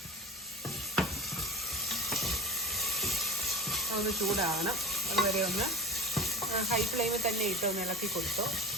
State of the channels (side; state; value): both; normal; correlation 0.31